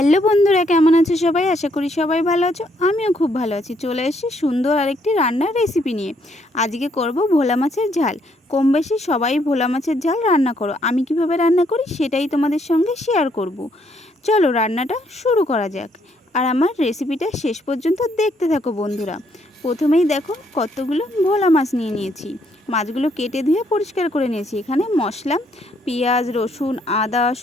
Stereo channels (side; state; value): both; normal; correlation 0.71